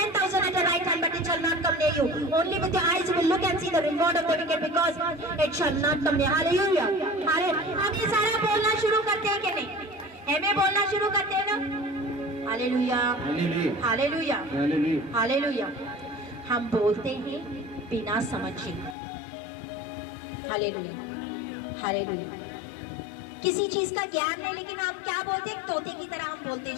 10,000 at your right hand, but it shall not come near you. Only with your eyes you will look and see the reward of the wicked, because it shall not come near. Hallelujah. हम ये सारा बोलना शुरू करते हैं कि नहीं? हमें बोलना शुरू करते हैं ना? Hallelujah, hallelujah, hallelujah. हम बोलते हैं बिना समझे। Hallelujah, hallelujah. किसी चीज का ज्ञान नहीं, लेकिन आप क्या बोलते हैं? तोते की तरह हम बोलते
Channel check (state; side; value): drops out; right; at 18.9 s